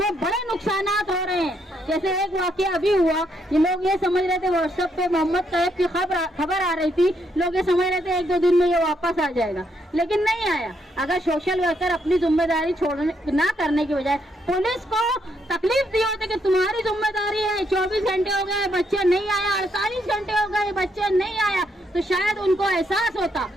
बड़े नुकसानात हो रहे हैं। जैसे एक वाकया अभी हुआ, ये लोग ये समझ रहे थे व्हाट्सएप पे मोहम्मद तैयब की खबर आ रही थी, लोग ये समझ रहे थे 1-2 दिन में ये वापस आ जाएगा, लेकिन नहीं आया। अगर सोशल वर्कर अपनी जिम्मेदारी छोड़ने ना करने की बजाय पुलिस को तकलीफ दी होती कि तुम्हारी जिम्मेदारी है, 24 घंटे हो गए बच्चा नहीं आया, 48 घंटे हो गए बच्चा नहीं आया, तो शायद उनको एहसास होता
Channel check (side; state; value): both; normal; correlation 0.75